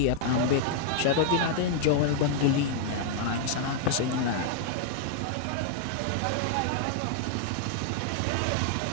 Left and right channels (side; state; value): both; different; correlation -0.01